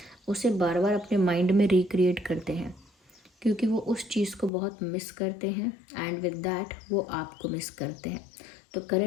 उसे बार बार अपने माइंड में रिक्रिएट करते हैं, क्योंकि वो उस चीज़ को बहुत मिस करते हैं एंड विद दैट वो आपको मिस करते हैं। तो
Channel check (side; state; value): right; drops out; at 4.5 s